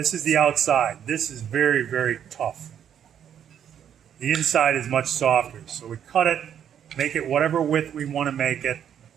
is the outside. This is very, very tough. The inside is much softer. So we cut it, make it whatever width we want to make it,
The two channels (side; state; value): left; quieter; 9.2 dB